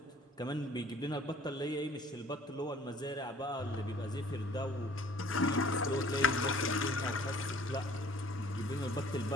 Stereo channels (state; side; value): normal; both; correlation 0.53